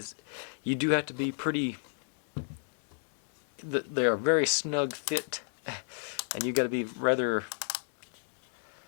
you do have to be pretty. They are very snug fit, and you got to be rather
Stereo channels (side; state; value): right; silent; digital silence